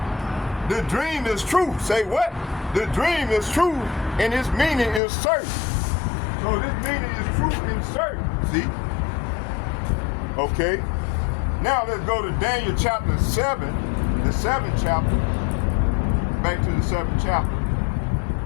The dream is true. Say what? The dream is true, and its meaning is certain. So this meaning is true and certain, see? Okay. Now let's go to Daniel chapter 7, the 7th chapter. Back to the 7th chapter.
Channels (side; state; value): right; drops out; at 5.0 s